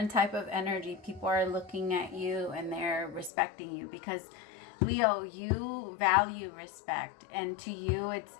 type of energy. People are looking at you and they're respecting you because, Leo, you value respect, and to you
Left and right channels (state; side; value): drops out; right; at 3.3 s